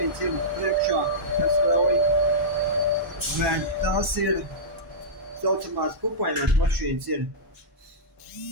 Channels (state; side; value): normal; both; correlation -0.14